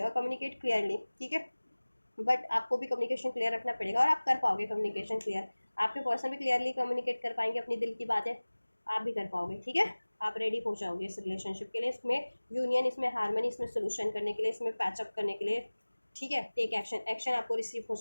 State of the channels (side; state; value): both; inverted; correlation -1.00